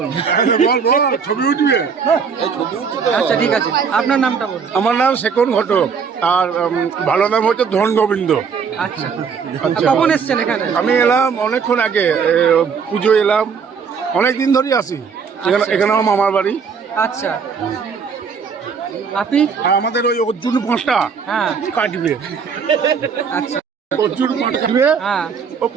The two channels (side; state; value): left; quieter; 6.1 dB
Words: না। বল বল, ছবি উঠবে। আচ্ছা ঠিক আছে, আপনার নামটা বলুন। আমার নাম শেখর ঘটক, আর ভালো নাম হচ্ছে ধন গোবিন্দ। আচ্ছা আচ্ছা। কখন এসছেন এখানে? আমি এলাম অনেকক্ষণ আগে, পুজো এলাম, অনেক দিন ধরেই আসি এখানে। এখানে আমার মামার বাড়ি। আচ্ছা আপনি? আর আমাদের ওই অর্জুন পাঁচটা হ্যাঁ কাটবে, আচ্ছা অর্জুন পাঁচ কাটবে। হ্যাঁ ও